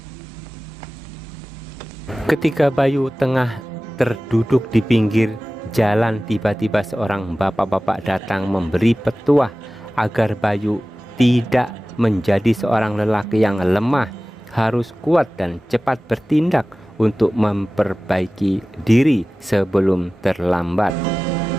Ketika Bayu tengah terduduk di pinggir jalan, tiba-tiba seorang bapak-bapak datang memberi petuah agar Bayu tidak menjadi seorang lelaki yang lemah, harus kuat dan cepat bertindak untuk memperbaiki diri sebelum terlambat.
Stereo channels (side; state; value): both; normal; correlation 0.97